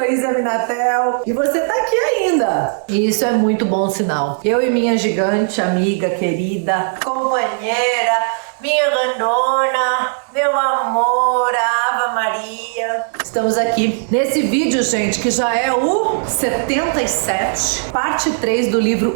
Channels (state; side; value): silent; left; 61 dB below the other